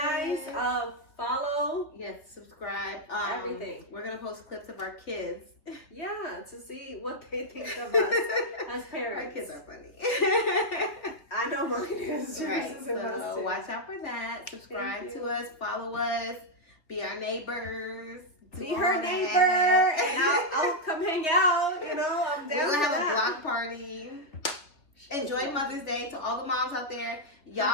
guys. it. Follow. Yes, subscribe. Everything. We're gonna post clips of our kids. Yeah, to see what they think of us as parents. Our kids are funny. I know mine is. Right. Is So watch out for that. Subscribe to us. Follow us. Be our neighbors. Be her neighbor, and I'll come hang out. You know, I'm down. We're gonna have that. a block party. Enjoy Mother's Day to all the moms out there. Y'all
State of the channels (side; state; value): right; late; 3.4 ms